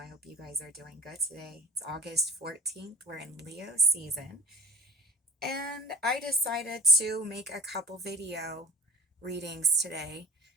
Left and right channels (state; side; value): normal; both; correlation 0.36